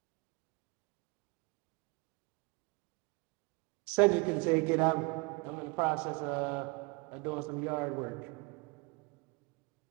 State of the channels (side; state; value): left; quieter; 27.9 dB